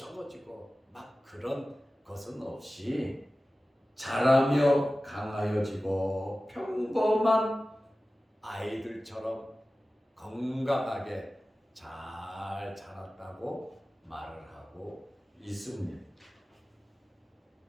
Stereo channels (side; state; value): both; normal; correlation 0.96